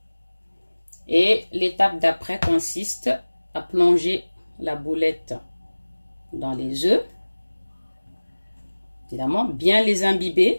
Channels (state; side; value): inverted; both; correlation -1.00